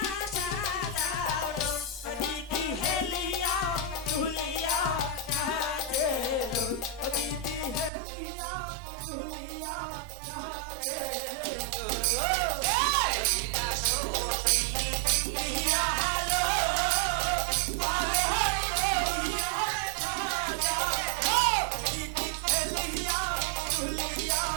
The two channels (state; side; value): drops out; left; at 7.9 s